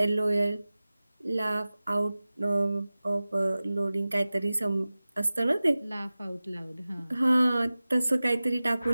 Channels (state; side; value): inverted; both; correlation -0.97